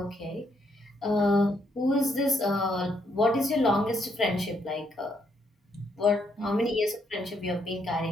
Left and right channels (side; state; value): both; normal; correlation 0.74